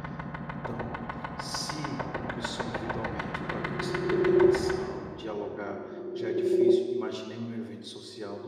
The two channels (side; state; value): both; identical; correlation 1.00